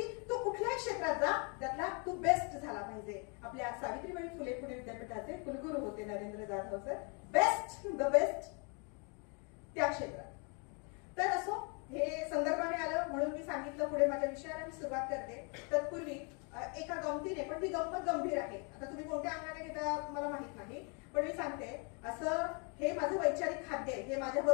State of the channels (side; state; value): right; quieter; 35.6 dB